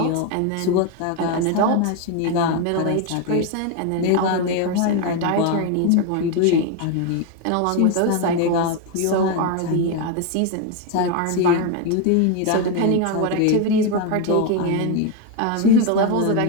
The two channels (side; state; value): both; different; correlation 0.02